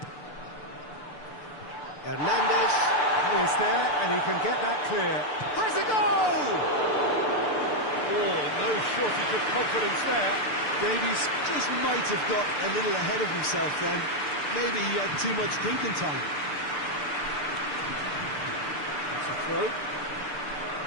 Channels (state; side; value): late; right; 6.8 ms